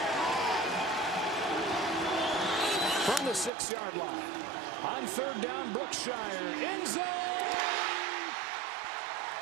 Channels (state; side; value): drops out; left; at 3.5 s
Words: From the 6-yard line. On 3rd down, Brookshire. End zone!